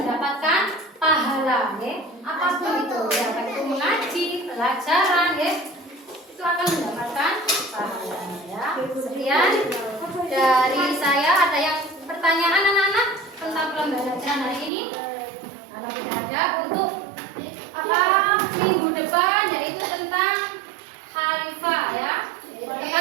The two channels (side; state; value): left; drops out; at 14.7 s